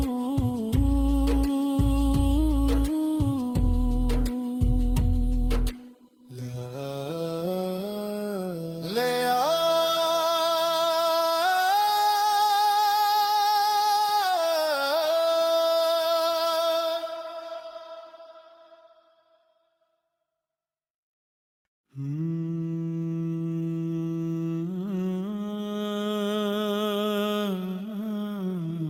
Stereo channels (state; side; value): identical; both; correlation 1.00